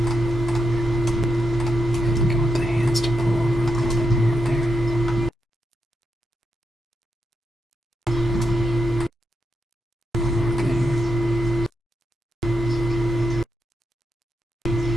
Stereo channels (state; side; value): normal; both; correlation 0.84